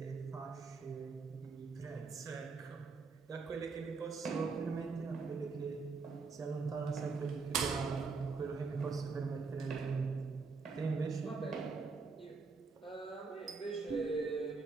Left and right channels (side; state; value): left; quieter; 4.5 dB